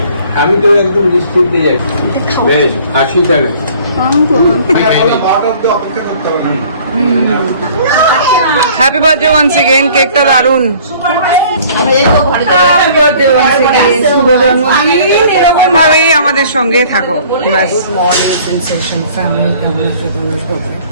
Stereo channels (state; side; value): inverted; both; correlation -0.53